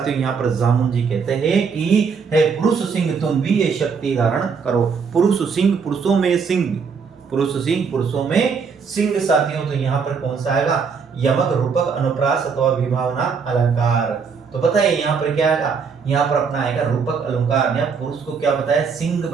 यहाँ पर जामुन जी कहते हैं कि हे पुरुष सिंह तुम भी ये शक्ति धारण करो। पुरुष सिंह, पुरुषों में सिंह, पुरुष सिंह पुरुषों में सिंह साथियों। तो यहाँ पर कौन सा आएगा? यमक, रूपक, अनुप्रास अथवा विभावना अलंकार। तो बताइए यहाँ पर क्या आएगा? यहाँ पर अपना आएगा रूपक अलंकार। या पुरुष को क्या बताया? सिंह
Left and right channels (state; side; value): quieter; left; 5.7 dB